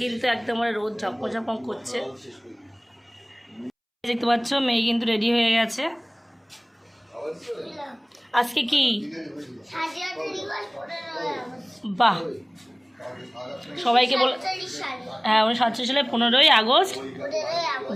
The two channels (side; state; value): both; identical; correlation 1.00